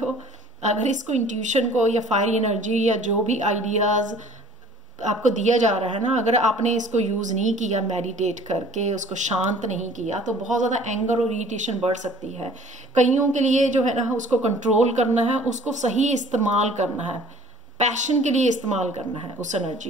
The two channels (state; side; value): normal; both; correlation 0.51